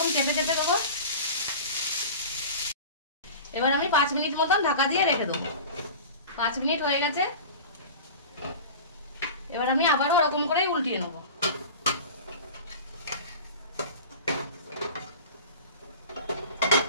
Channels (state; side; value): inverted; both; correlation -0.35